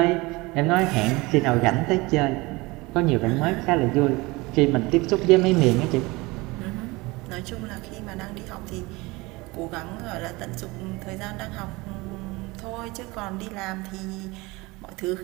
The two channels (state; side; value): quieter; left; 23.0 dB